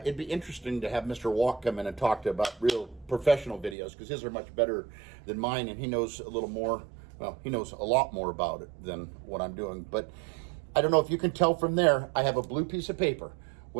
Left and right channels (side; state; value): left; drops out; at 3.8 s